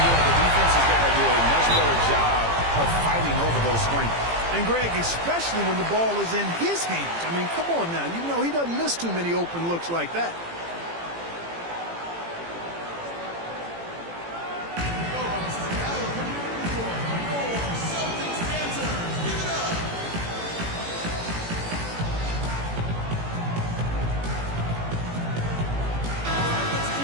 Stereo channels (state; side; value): late; left; 18 ms